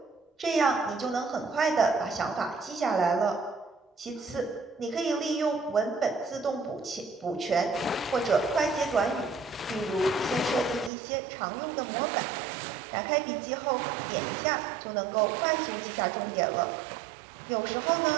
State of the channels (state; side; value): drops out; left; at 10.9 s